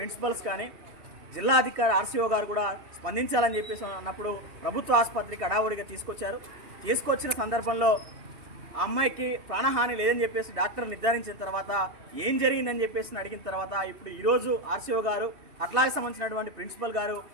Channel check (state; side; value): late; left; 2.5 ms